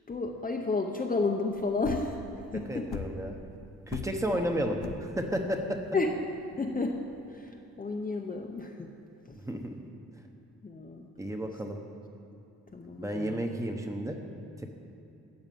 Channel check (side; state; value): both; normal; correlation 0.61